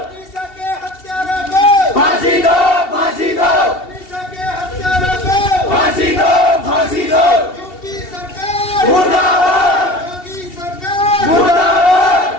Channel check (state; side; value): late; right; 2.7 ms